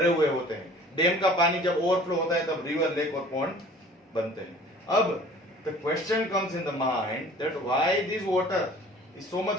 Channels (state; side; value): normal; both; correlation 0.48